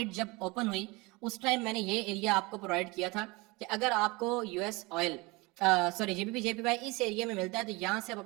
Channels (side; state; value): left; quieter; 24.7 dB